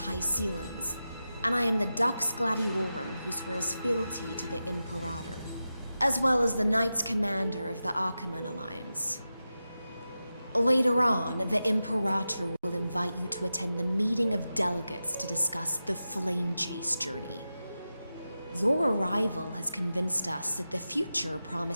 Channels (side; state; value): both; inverted; correlation -0.92